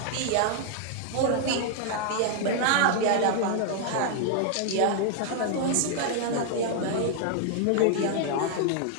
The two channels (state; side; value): different; both; correlation 0.00